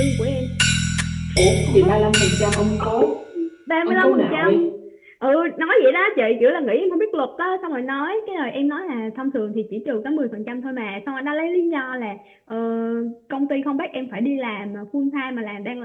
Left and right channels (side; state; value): both; identical; correlation 1.00